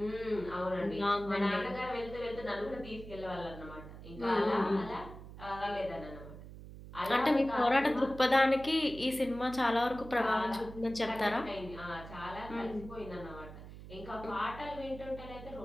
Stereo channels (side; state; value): right; noise; hum, 14 dB below the sound